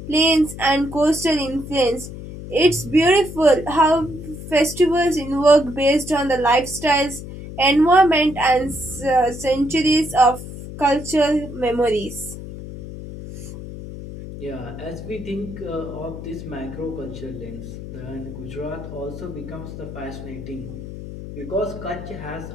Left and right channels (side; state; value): left; noise; hum, 11 dB below the sound